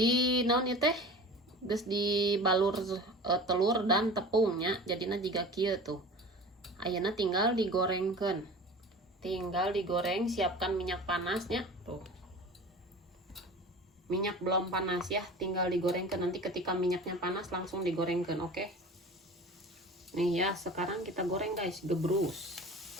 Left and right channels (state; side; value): normal; both; correlation 0.38